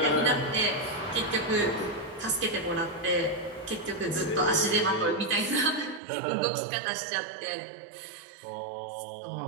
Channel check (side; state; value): left; drops out; at 6.0 s